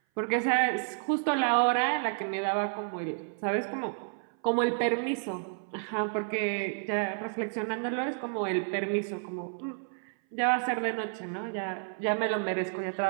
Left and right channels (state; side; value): silent; left; 56 dB below the other